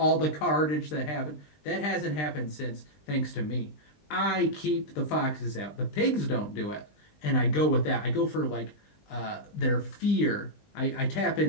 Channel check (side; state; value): right; late; 20 ms